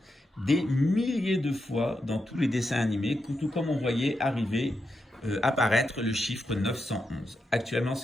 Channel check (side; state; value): both; normal; correlation 0.86